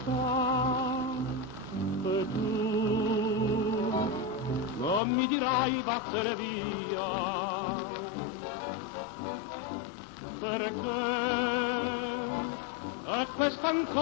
E tu non mi dirai vattene via, perché è questa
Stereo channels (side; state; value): right; drops out; at 5.0 s